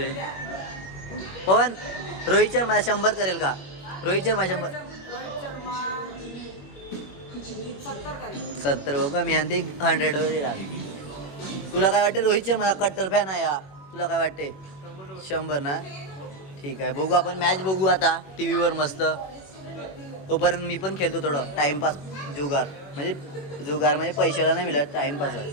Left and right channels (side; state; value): right; late; 21 ms